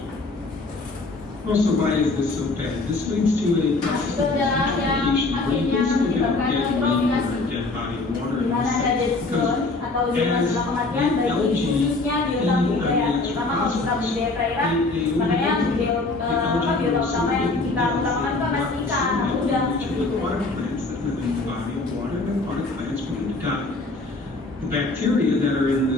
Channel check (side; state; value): right; quieter; 3.3 dB